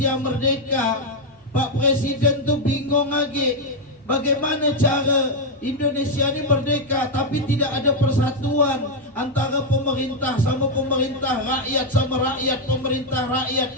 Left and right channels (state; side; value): normal; both; correlation 0.01